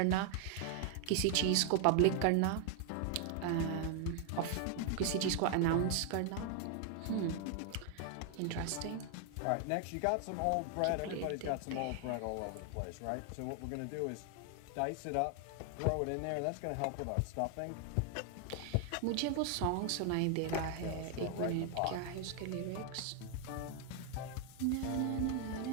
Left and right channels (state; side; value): different; both; correlation 0.00